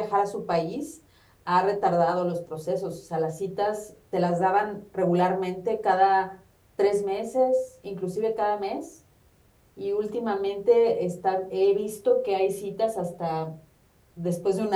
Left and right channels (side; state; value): both; identical; correlation 1.00